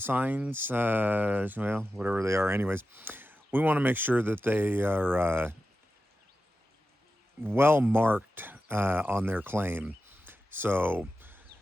well, whatever they are anyways. We want to make sure that they are well marked on their claim. So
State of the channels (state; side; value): normal; both; correlation 0.92